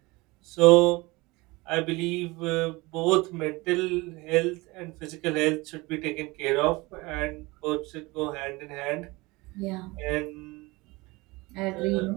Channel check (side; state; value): left; quieter; 23.1 dB